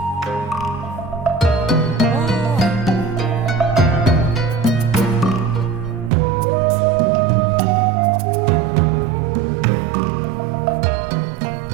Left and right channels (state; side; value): drops out; left; at 6.1 s